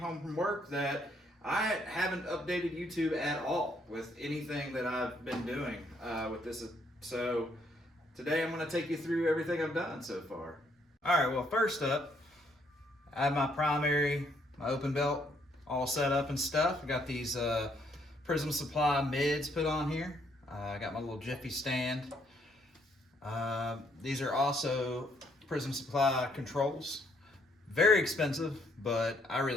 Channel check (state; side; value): normal; both; correlation 0.70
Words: home from work that I haven't updated YouTube at all with anything that I've been doing with this. So today I'm going to take you through everything I've done so far. All right, well, first up, I have my primary, my open belt all set up and stuff. I got these Prism Supply mids put on here. I got my little Jiffy stand. These are also Prism Supply controls. Very expensive, but I